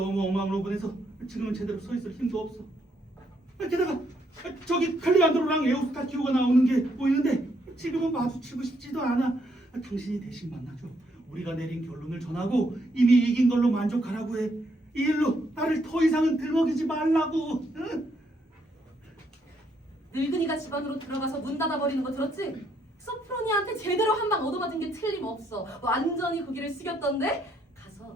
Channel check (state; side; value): normal; both; correlation 0.73